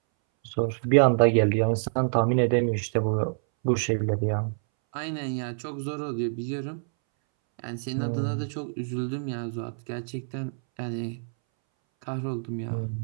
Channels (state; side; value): silent; left; 60 dB below the other